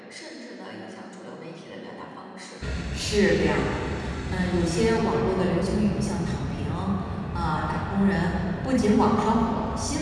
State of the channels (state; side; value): identical; both; correlation 1.00